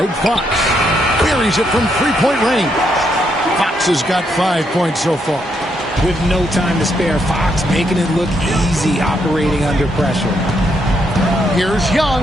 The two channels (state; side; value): normal; both; correlation 0.77